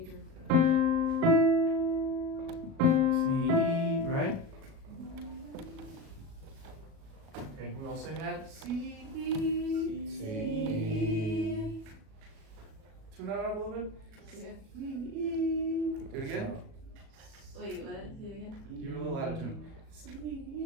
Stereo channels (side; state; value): left; late; 37 ms